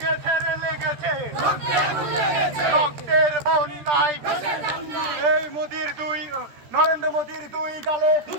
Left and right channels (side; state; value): left; late; 13 ms